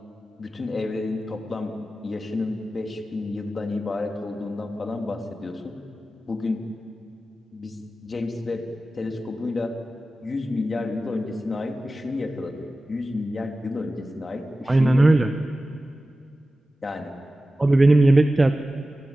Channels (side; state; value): both; normal; correlation 0.94